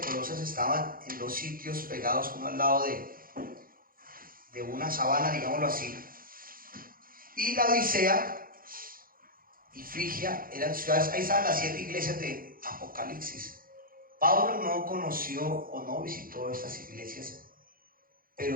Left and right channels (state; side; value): late; left; 0.42 ms